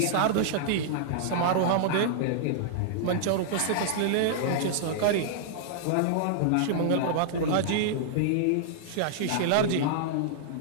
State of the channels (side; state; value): both; different; correlation -0.01